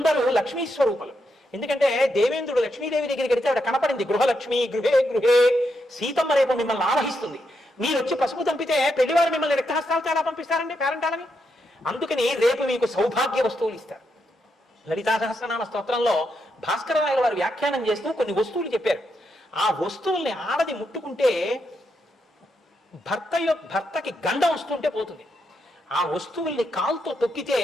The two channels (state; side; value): normal; both; correlation 0.82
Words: లక్ష్మీ స్వరూపులు. ఎందుకంటే దేవేంద్రుడు లక్ష్మీదేవి దగ్గరికి వెళితే ఆవిడ కనపడింది, గృహలక్ష్మి గృహే గృహే. సీతమ్మ రేపు మిమ్మల్ని ఆవహిస్తుంది. మీరు వచ్చి పసుపు దంపితే పెళ్లివారు మిమ్మల్ని రక్తహస్తాలతో ఎలా పంపిస్తారండి పేరంటాలని. అందుకని రేపు మీకు సౌభాగ్య వస్తువులు ఇస్తారు. లలితా సహస్రనామ స్తోత్రంలో భాస్కర రాయల వారు వ్యాఖ్యానం చేస్తూ కొన్ని వస్తువులు చెప్పారు. ఆ వస్తువుల్ని ఆడది ముట్టుకుంటే భర్తకి గండం వస్తుంటే పోతుంది. ఆ వస్తువుల్ని కాలుతో తొక్కితే